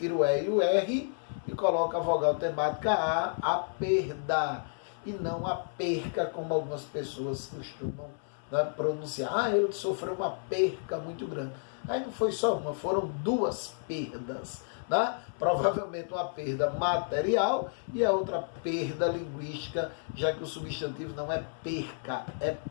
o E e o R e coloco a vogal temática a perda. E não a perca, como algumas pessoas costumam, né, pronunciar. Ah, ele sofreu uma perca muito grande. Aí não foi só uma, foram duas perdas. Né? Provavelmente uma perda material e a outra perda linguística, já que o substantivo não é perca, é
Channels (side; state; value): right; silent; 57 dB below the other